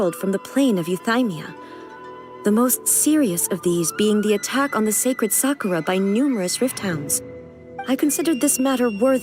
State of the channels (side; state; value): both; identical; correlation 1.00